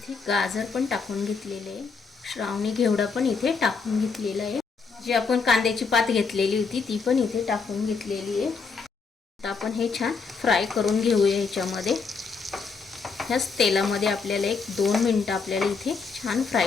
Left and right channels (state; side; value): quieter; right; 5.0 dB